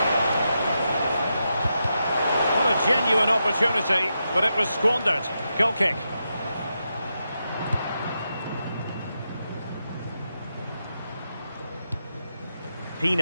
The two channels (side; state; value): both; inverted; correlation -0.86